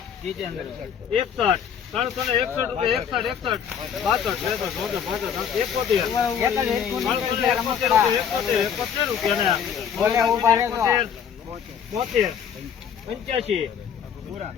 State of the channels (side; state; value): right; quieter; 7.9 dB